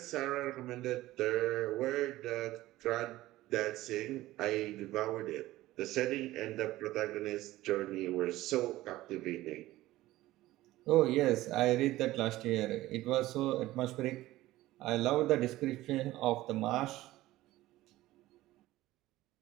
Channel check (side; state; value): left; quieter; 16.6 dB